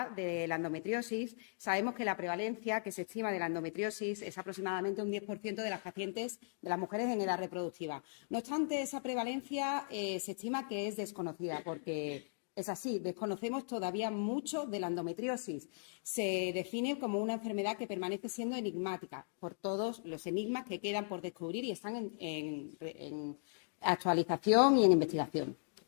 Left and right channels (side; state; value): right; silent; digital silence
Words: de la endometriosis. Sabemos que la prevalencia que se estima de la endometriosis es aproximadamente un 10% de las pacientes, de las mujeres en edad reproductiva. No obstante, esa prevalencia se estima que es desconocida porque es así, desconocemos todavía mucho de la endometriosis. Se define como una enfermedad que permanece siendo enigmática por todos los enigmas que quedan por descubrir y están en actualización y en investigación.